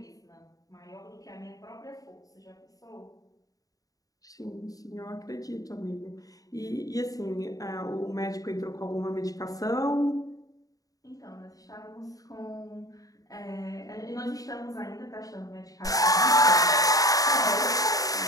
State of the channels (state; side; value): late; right; 0.17 ms